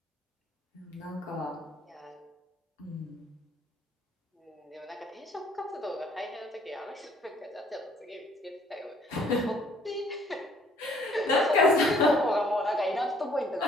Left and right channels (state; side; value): normal; both; correlation 0.61